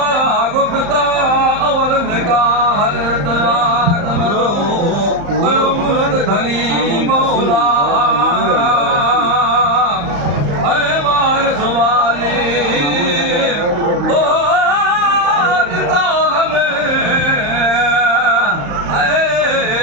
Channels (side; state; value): left; late; 35 ms